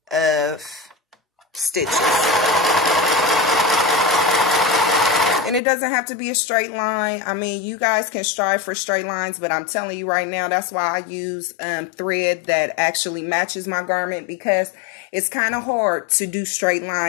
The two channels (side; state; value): right; drops out; at 5.6 s